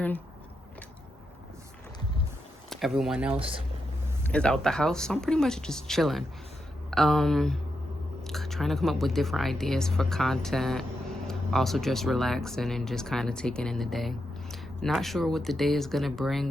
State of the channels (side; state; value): both; normal; correlation 0.85